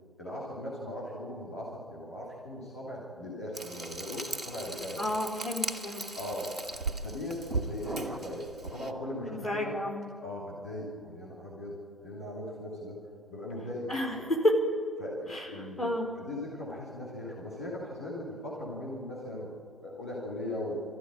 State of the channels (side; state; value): both; normal; correlation 0.47